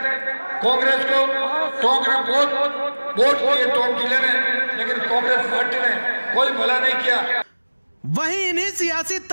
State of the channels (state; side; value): inverted; both; correlation -1.00